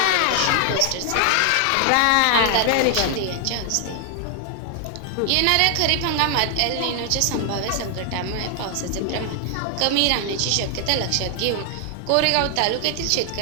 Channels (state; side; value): different; both; correlation 0.00